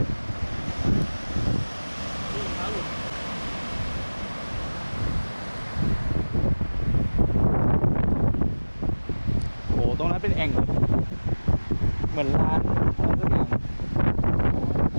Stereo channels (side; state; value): both; inverted; correlation -1.00